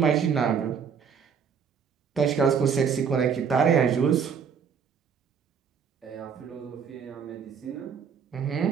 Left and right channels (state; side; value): quieter; left; 6.8 dB